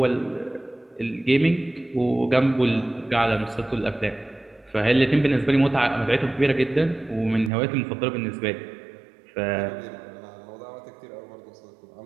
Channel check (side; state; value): left; drops out; at 7.5 s